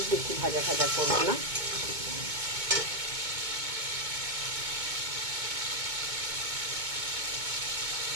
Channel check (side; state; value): left; late; 2.2 ms